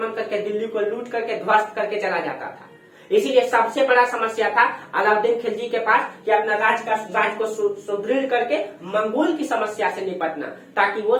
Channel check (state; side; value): identical; both; correlation 1.00